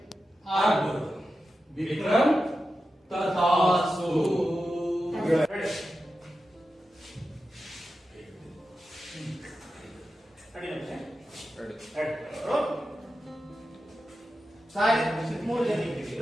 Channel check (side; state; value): both; normal; correlation 0.91